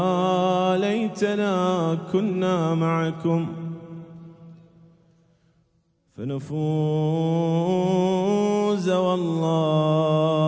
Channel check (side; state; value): both; identical; correlation 1.00